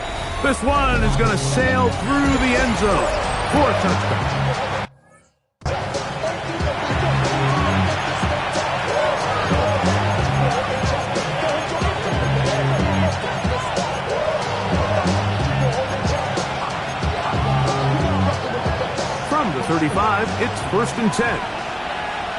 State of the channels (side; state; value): both; identical; correlation 1.00